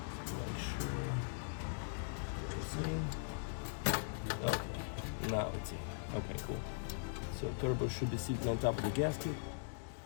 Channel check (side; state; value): right; silent; digital silence